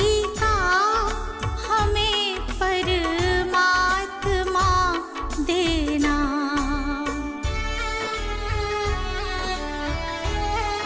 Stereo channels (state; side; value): identical; both; correlation 1.00